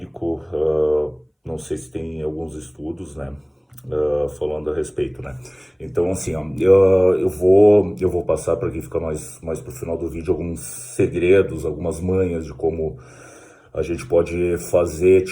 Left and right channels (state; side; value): identical; both; correlation 1.00